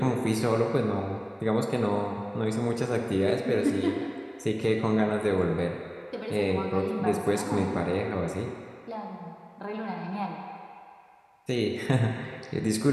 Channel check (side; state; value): both; identical; correlation 1.00